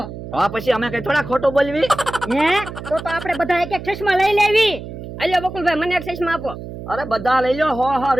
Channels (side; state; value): right; noise; hum, 11 dB below the sound